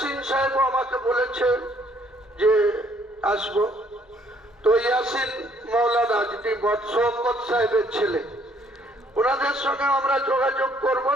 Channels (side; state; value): both; normal; correlation 0.64